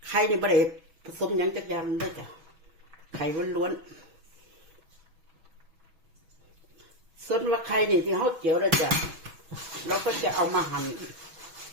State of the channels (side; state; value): left; late; 6.2 ms